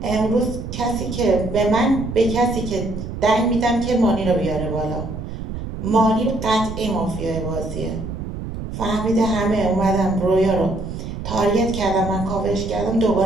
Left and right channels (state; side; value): noise; right; rumble, 7 dB below the sound